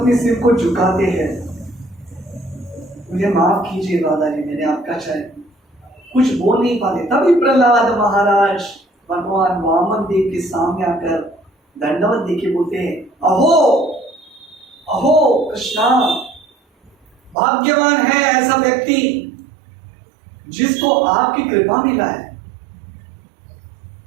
सिर को झुकाते हैं, मुझे माफ कीजिए दादाजी, मैंने आपका चाहे, कुछ बोल नहीं पाते। तभी प्रहलाद महाराज भगवान वामन देव के सामने आकर दंडवत देके बोलते हैं, अहो अहो कृष्णा, भाग्यवान है ऐसा व्यक्ति जिसको आपकी कृपा मिला है।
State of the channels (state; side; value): drops out; left; at 17.4 s